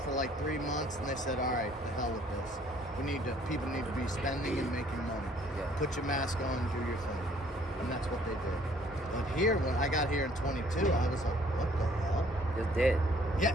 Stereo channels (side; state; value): both; normal; correlation 0.60